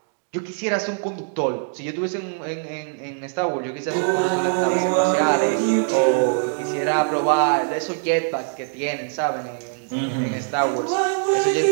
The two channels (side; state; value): left; silent; digital silence